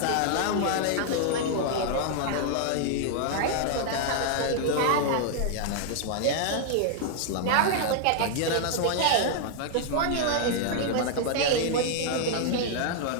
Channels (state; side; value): different; both; correlation -0.01